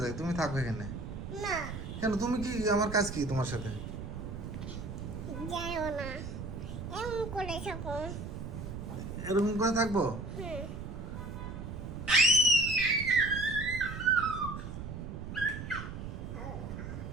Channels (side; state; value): right; noise; rumble, 7 dB below the sound